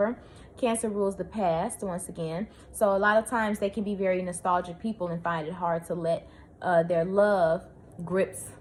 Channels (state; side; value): identical; both; correlation 1.00